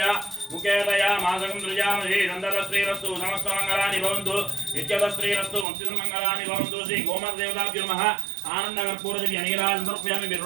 ముఖేతయా మాసకం దృజామహే నందరశ్రీరస్తు సమస్త మంగళాని భవంతు నిత్యత శ్రీరస్తు వంశిత మంగళాని భవంతు. శ్రీ గోమాత దేవతాభ్యో నమః. ఆనంద కర్పూర దివ్య నీరాజనం సమర్పయామి. మీరు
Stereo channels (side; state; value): left; drops out; at 5.7 s